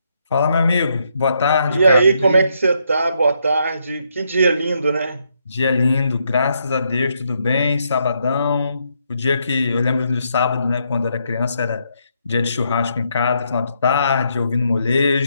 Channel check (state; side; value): inverted; both; correlation -0.76